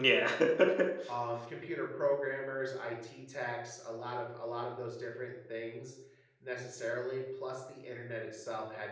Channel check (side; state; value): both; identical; correlation 1.00